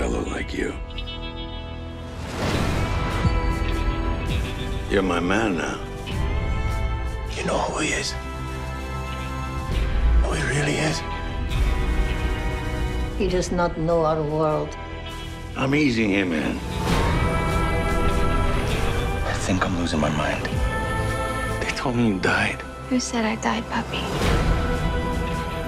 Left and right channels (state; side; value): identical; both; correlation 1.00